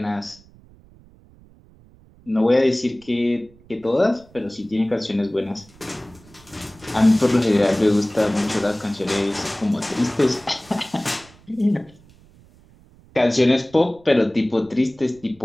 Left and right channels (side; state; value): right; noise; rumble, 26 dB below the sound